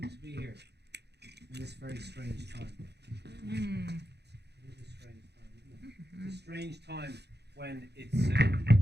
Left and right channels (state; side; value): late; left; 0.49 ms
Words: to be here in this very strange time. It is a strange time, isn't it? It's a strange time when it's.